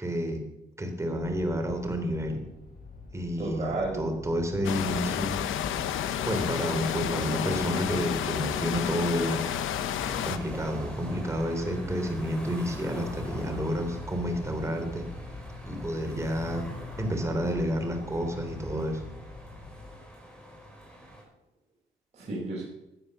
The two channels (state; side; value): normal; both; correlation 0.64